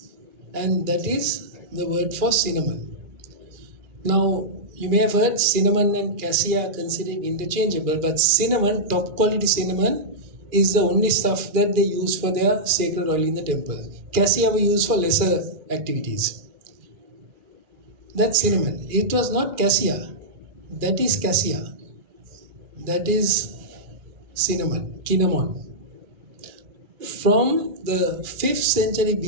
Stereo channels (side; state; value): left; late; 2.4 ms